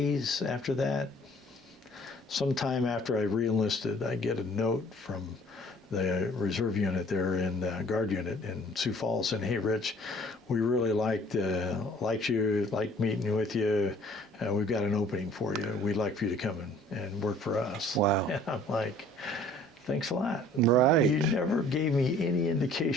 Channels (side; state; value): both; normal; correlation 0.54